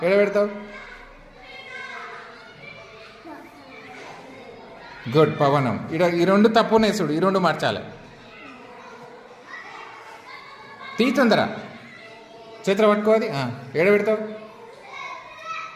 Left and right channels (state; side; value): identical; both; correlation 1.00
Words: ఎడ పెడతావు? గుడ్. పవనం. ఈ రెండు తప్పునే చూడు, ఈ రెండు మార్చాలి. తీ తొందర, చేతిలో పట్టుకోవాలి. ఎడ పెడతావు?